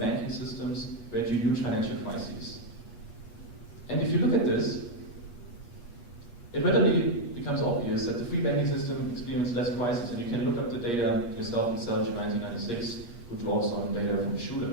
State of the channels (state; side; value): late; right; 8.4 ms